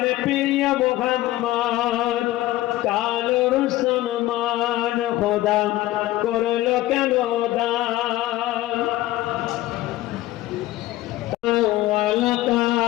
প্রিয় মুহাম্মদ কালোর সম্মান খোদা করলো কেন দান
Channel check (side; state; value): right; quieter; 16.2 dB